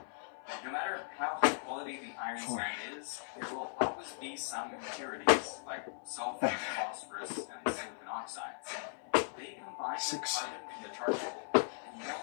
No matter how high quality the iron 4, sand is, there will always be some impurities like sulfur, 5, phosphorus, and silicon oxides. They combine with 6, carbon from the charcoal and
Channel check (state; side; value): silent; right; 53 dB below the other